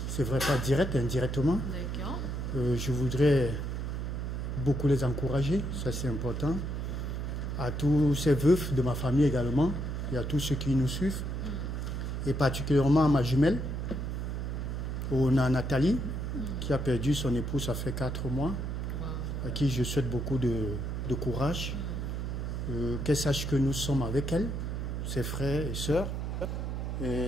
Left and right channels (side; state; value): right; noise; hum, 3 dB below the sound